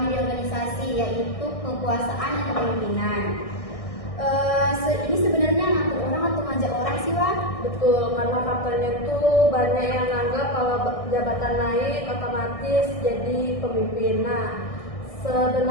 di organisasi, yaitu kekuasaan dan kepemimpinan. Ini sebenarnya ngatur orang atau ngajak orang sih, Wak? Betul, karena faktanya itu banyak yang anggap kalau jabatan naik otomatis jadi pemimpin. Nah,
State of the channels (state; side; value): late; right; 1.6 ms